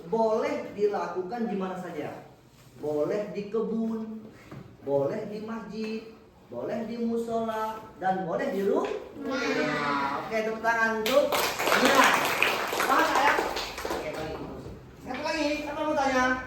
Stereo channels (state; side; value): identical; both; correlation 1.00